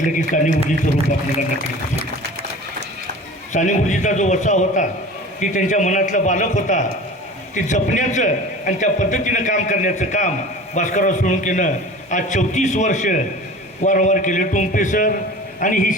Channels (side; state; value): both; normal; correlation 0.38